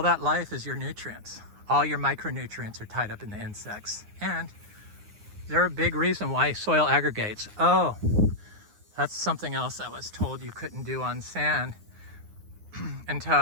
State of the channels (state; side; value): late; left; 9.6 ms